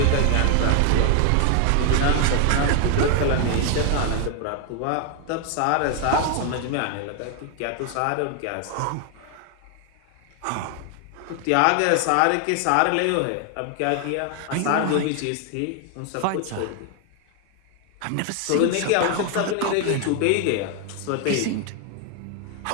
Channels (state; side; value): different; both; correlation 0.00